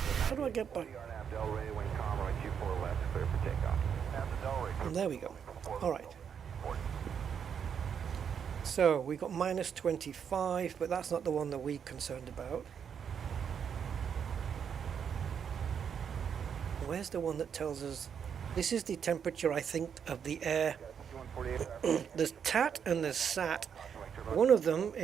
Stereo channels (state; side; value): quieter; left; 7.5 dB